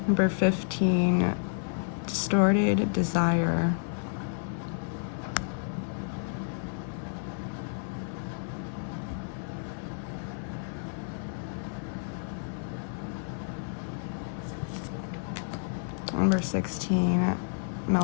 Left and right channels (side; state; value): right; silent; 57 dB below the other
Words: Number 15, distorted desire. Number 16,